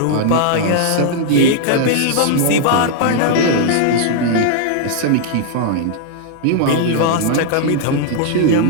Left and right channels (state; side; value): different; both; correlation -0.01